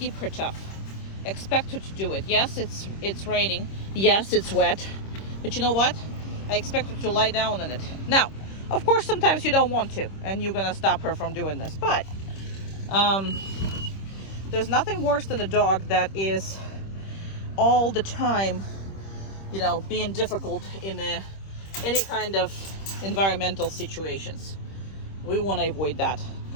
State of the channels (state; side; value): late; right; 26 ms